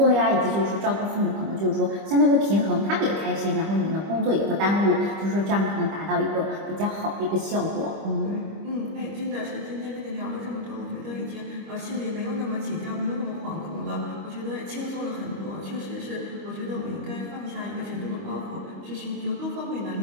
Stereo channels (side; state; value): left; late; 25 ms